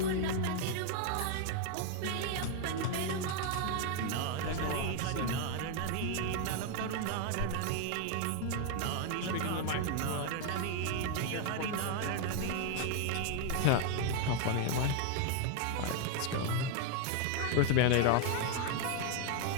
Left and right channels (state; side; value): different; both; correlation 0.01